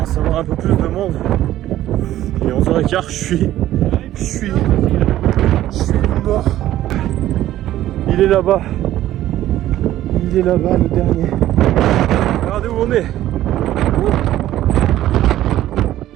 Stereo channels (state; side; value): quieter; left; 13.6 dB